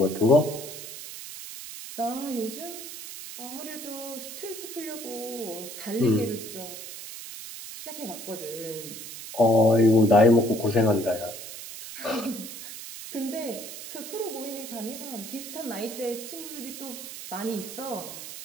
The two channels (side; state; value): right; noise; hiss, 11 dB below the sound